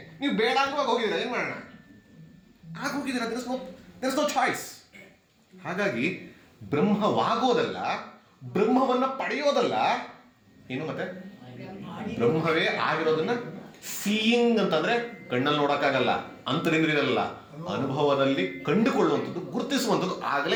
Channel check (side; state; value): both; identical; correlation 1.00